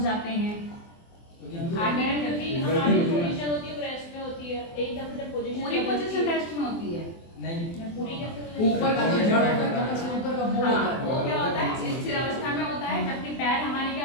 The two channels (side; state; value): right; late; 24 ms